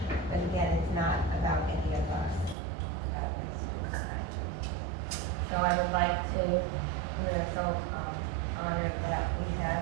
But again, it's not about any of us. It's about this tonight. So I would like to, we're so honored that we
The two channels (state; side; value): drops out; left; at 2.6 s